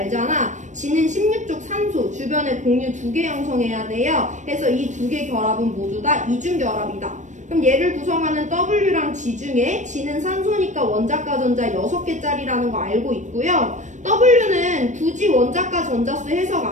G는 16쪽 산소, 주변에 공유 2개 형성해야 돼요. 그래서 이 2개 결합은 모두 다 이중결합이다. 그럼 얘를 구성하는 W랑 G 중에 G는 산소니까 원자과 전자 6개짜리라는 거 알고 있고요. W는 굳이 원자과 전자수 해석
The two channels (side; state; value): left; late; 0.35 ms